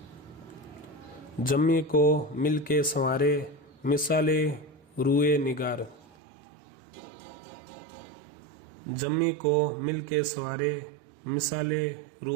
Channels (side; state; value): left; drops out; at 6.1 s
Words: जम्मी को मिल के संवारे मिसाले रुए निगार। जम्मी को मिल के संवारे मिसाले